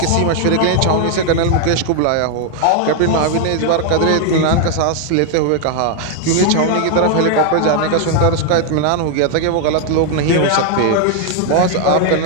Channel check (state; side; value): different; both; correlation 0.00